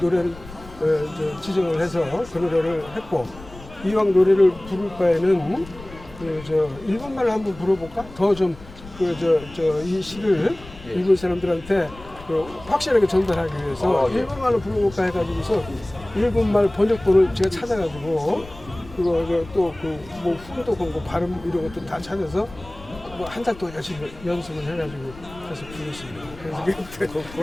노래를 지정을 해서 그 노래를 했고 이왕 노래를 부를 바에는 일본말로 한번 불러볼까? 더 좀 이 시를 일본 사람들한테 확실하게 전달하기 위해서 예. 일본말로 불러볼까 해가지고서 일본말 번역본을 제가 찾아가지고 그거 또뭐 훈독하고 뭐 발음 이런 것도 다 찾아서 뭐 한 달 동안 열심히 연습을 해가지고 해서 불렀습니다.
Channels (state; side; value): noise; left; rumble, 18 dB below the sound